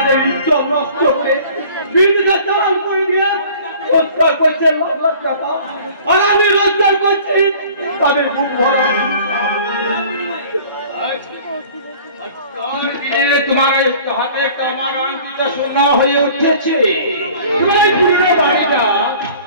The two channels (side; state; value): both; inverted; correlation -0.48